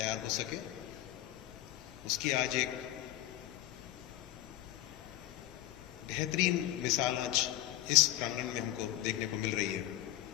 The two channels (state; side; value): quieter; right; 14.4 dB